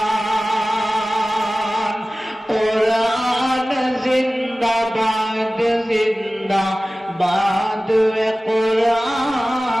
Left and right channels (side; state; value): both; normal; correlation 0.97